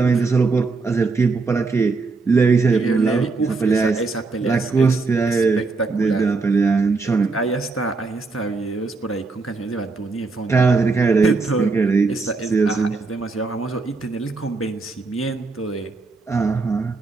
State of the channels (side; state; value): left; quieter; 4.1 dB